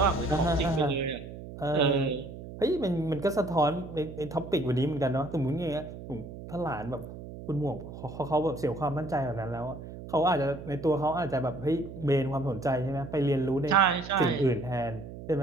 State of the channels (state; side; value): noise; right; hum, 12 dB below the sound